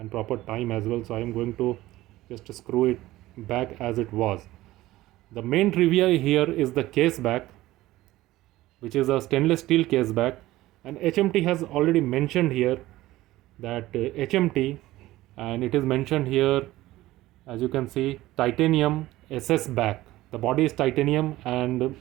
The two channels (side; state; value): left; quieter; 16.8 dB